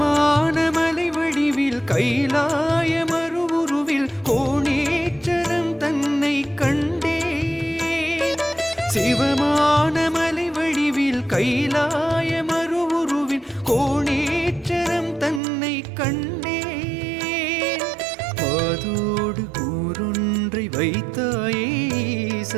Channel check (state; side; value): drops out; left; at 15.4 s